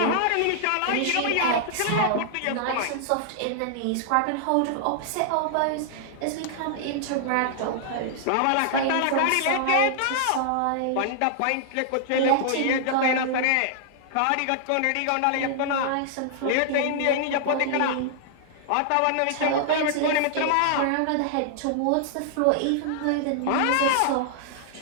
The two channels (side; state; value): both; different; correlation -0.01